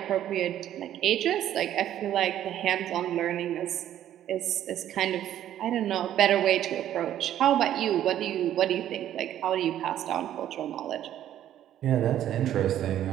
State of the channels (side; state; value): left; quieter; 11.6 dB